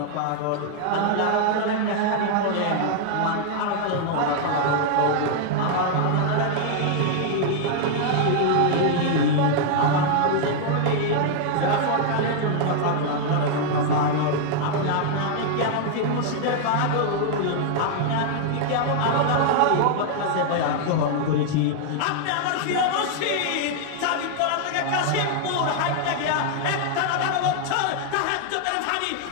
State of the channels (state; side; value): different; both; correlation 0.00